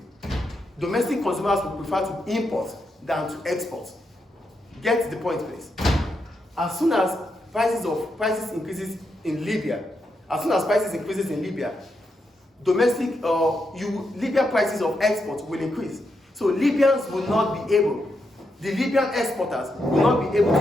domestic consumers will prefer to import than to export. Get the point, please. As soon as prices increases in Libya, Libya prices of export will increase. So Libyans will not be able, the Libyan exporters will not be able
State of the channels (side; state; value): both; normal; correlation 0.83